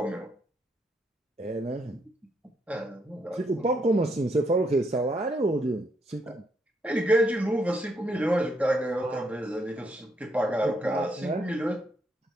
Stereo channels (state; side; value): normal; both; correlation 0.76